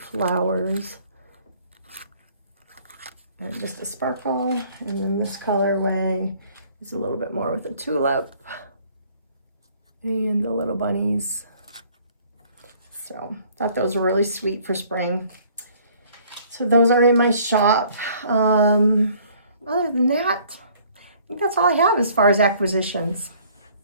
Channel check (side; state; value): both; inverted; correlation -0.58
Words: And just a sparkle, and then this colorway is a little bit more with a tulip and the little bunnies. So thought those were really sweet for spring. So those are in my shop. Other than that, I think that's all I have as far as acquisitions.